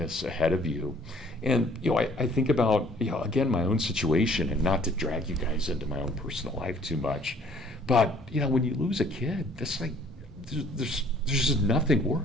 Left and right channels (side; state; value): both; normal; correlation 0.57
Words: ahead of you. And, I think about, again, my own situation, and not to drag you guys into my own personal life too much, but, when you lose a kid, that's like, there's just nothing